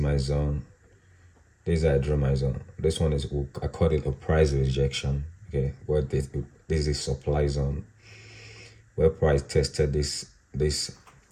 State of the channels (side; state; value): both; identical; correlation 1.00